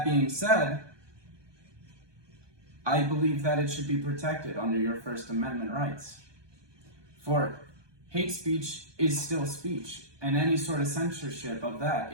being said, I believe that it should be protected under your First Amendment rights. For hate speech is still speech, and any sort of censorship of that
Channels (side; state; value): left; late; 1.2 ms